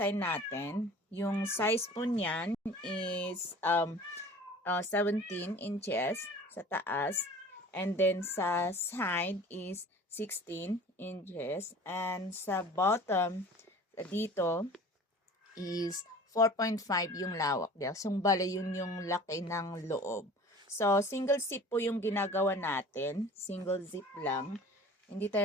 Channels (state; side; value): normal; both; correlation 0.44